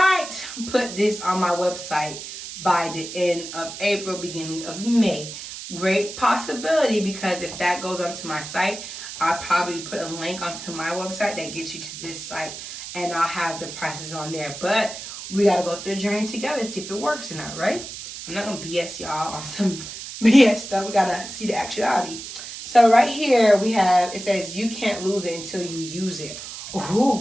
put this on my website by the end of April, beginning of May. Great possibility, because if that goes onto my site, I'll probably put a link onto my website that gets you to this site, and I'll have the prices on there. But we got to go through the journey together, see if it works or not, right? I'm not going to BS y'all on some BS stuff. We got to see the actuality. So right here we have, it says, you can't lose it until you use it.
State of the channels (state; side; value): noise; right; hiss, 10 dB below the sound